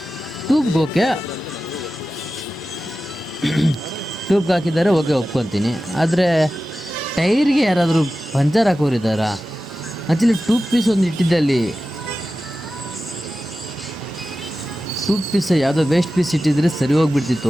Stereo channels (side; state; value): both; normal; correlation 0.94